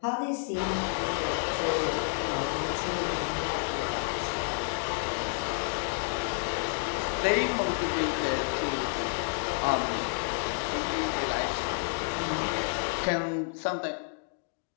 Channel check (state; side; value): silent; right; digital silence